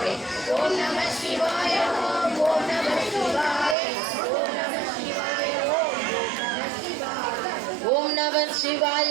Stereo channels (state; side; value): drops out; left; at 3.8 s